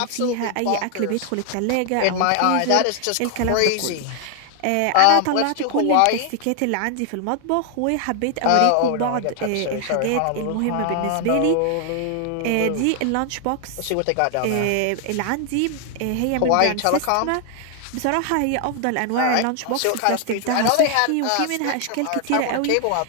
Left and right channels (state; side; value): different; both; correlation 0.00